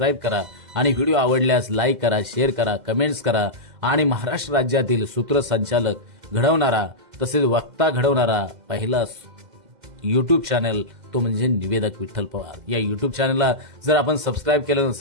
करा आणि व्हिडिओ आवडल्यास लाईक करा, शेअर करा, कमेंट्स करा आणि महाराष्ट्र राज्यातील सूत्रसंचालक घडवणारा तसेच वक्ता घडवणारा पहिला युट्यूब चॅनल तो म्हणजे निवेदक विठ्ठल पवार। या युट्यूब चॅनलला जर आपण सबस्क्राईब केलं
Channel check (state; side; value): late; left; 2.0 ms